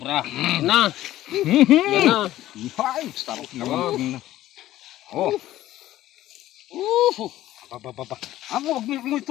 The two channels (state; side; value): quieter; right; 14.4 dB